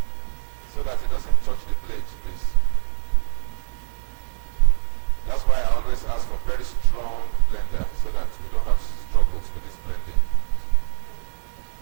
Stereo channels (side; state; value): left; silent; digital silence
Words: so that it doesn't touch the blade, please. That's why I always ask for very strong blender so that we don't have struggles with this blending.